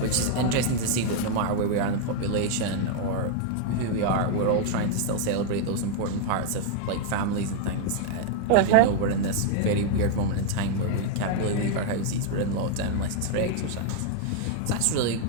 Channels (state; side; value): different; both; correlation 0.00